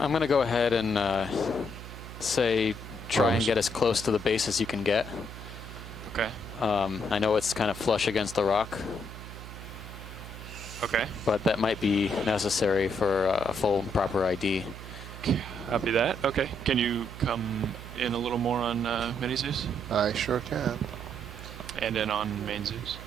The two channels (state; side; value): noise; right; hum, 12 dB below the sound